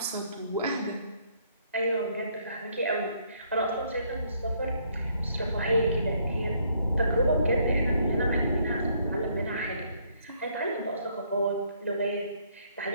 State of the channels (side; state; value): both; inverted; correlation -0.68